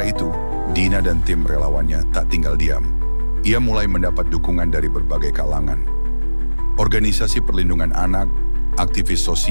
itu, Dina dan tim relawannya tak tinggal diam. Ia mulai mendapat dukungan dari berbagai kalangan. Organisasi perlindungan anak, aktivis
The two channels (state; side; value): inverted; both; correlation -1.00